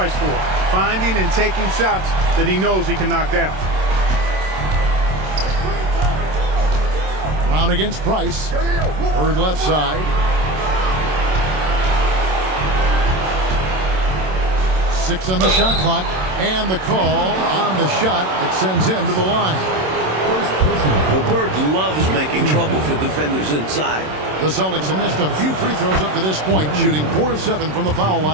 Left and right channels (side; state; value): left; late; 27 ms